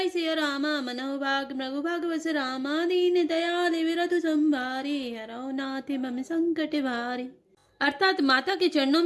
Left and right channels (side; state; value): both; identical; correlation 1.00